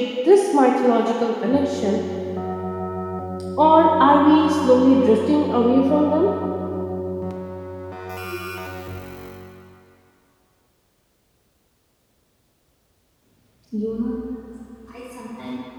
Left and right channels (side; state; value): both; identical; correlation 1.00